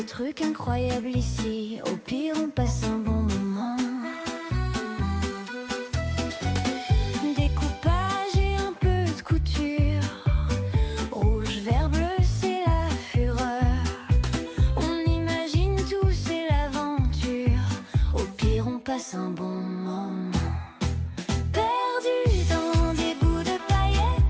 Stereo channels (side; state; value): both; identical; correlation 1.00